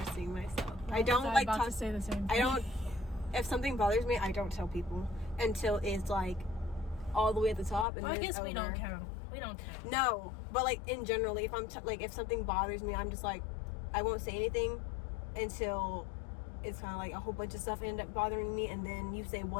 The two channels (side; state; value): right; drops out; at 7.9 s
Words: myself. I don't like to say the same thing. I don't. If something bothers me, I don't tell people until it's like all the way at the top. And well, I guess we don't count. We don't count. No, but like in generally, if I'm if something bothers me, I'm just like, I won't say anything until it's kind of like a whole bunch of stuff end up bothering me, and then you say